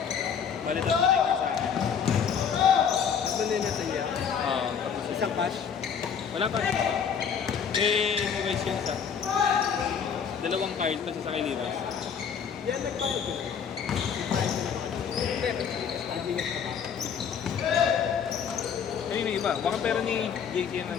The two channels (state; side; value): quieter; right; 7.2 dB